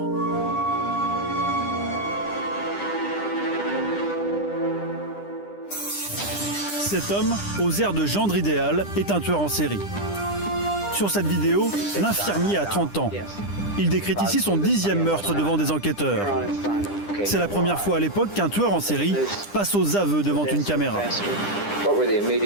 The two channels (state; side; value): late; right; 10 ms